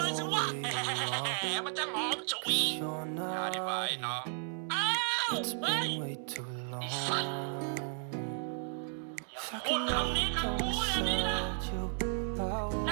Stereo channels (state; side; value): silent; left; digital silence